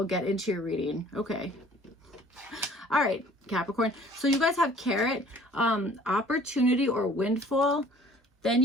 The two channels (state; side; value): normal; both; correlation 0.52